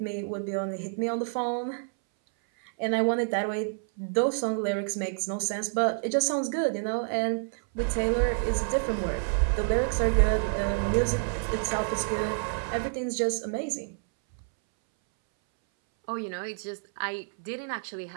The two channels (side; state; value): left; silent; 59 dB below the other